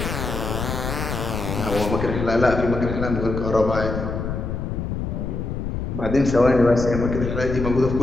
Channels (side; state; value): left; noise; rumble, 3 dB below the sound